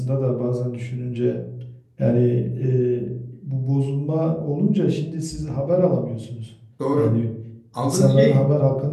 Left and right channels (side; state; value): both; identical; correlation 1.00